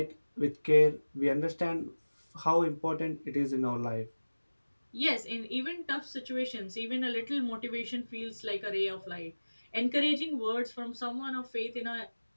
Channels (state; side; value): inverted; both; correlation -1.00